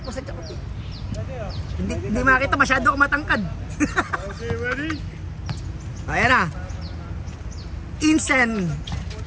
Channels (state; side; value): identical; both; correlation 1.00